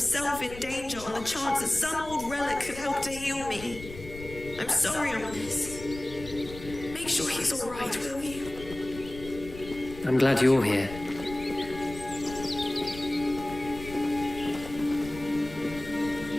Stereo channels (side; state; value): left; noise; rumble, 14 dB below the sound